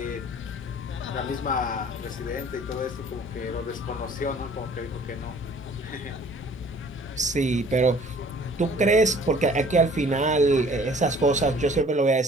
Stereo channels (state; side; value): normal; both; correlation 0.53